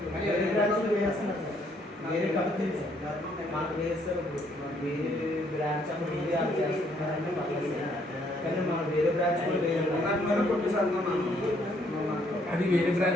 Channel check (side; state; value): both; normal; correlation 0.68